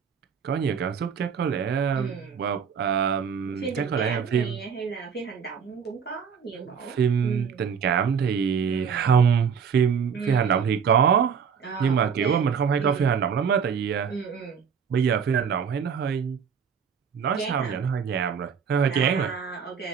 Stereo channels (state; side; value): quieter; left; 6.8 dB